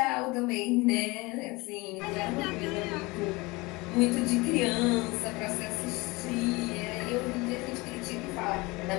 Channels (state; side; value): quieter; right; 23.8 dB